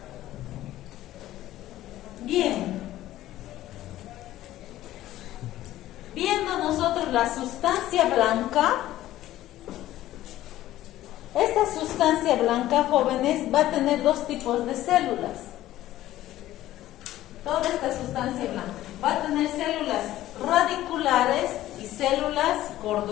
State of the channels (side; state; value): right; quieter; 14.4 dB